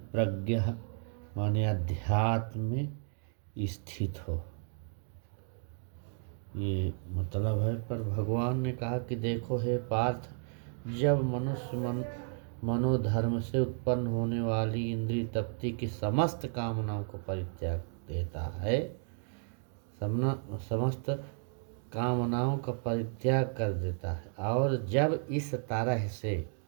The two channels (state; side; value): silent; left; 56 dB below the other